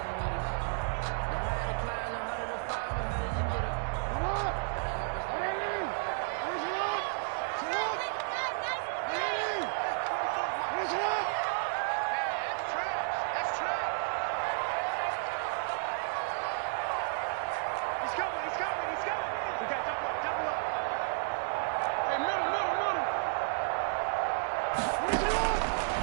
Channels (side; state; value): left; silent; digital silence